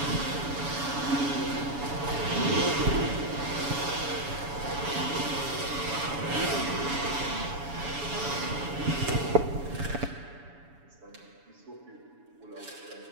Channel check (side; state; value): left; late; 7.1 ms